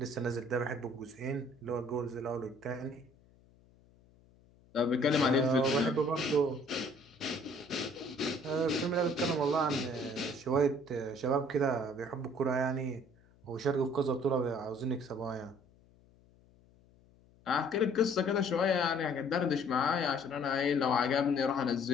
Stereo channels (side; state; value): left; noise; hum, 29 dB below the sound